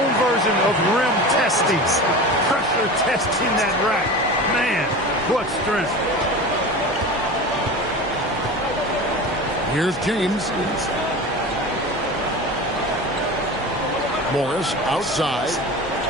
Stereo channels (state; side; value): normal; both; correlation 0.32